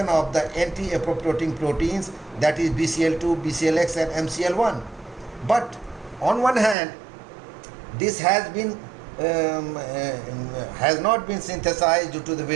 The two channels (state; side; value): drops out; left; at 6.8 s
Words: of the anti-apoptotic proteins, that is BCL2, BCLX and MCL1. But on one hand, this has not been synthesized due to the